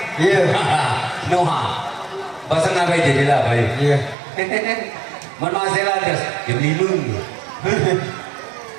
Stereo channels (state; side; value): drops out; left; at 4.2 s